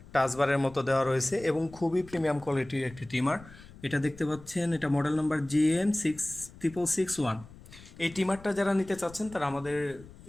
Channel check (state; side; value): noise; left; rumble, 20 dB below the sound